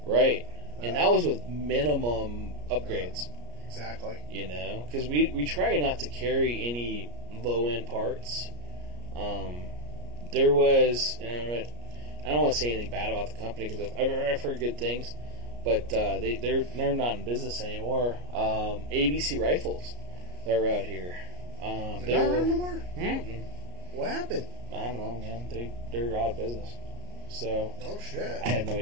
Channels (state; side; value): late; left; 34 ms